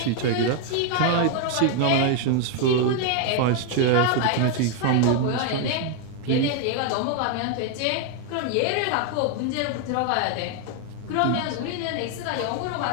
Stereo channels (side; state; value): both; different; correlation 0.01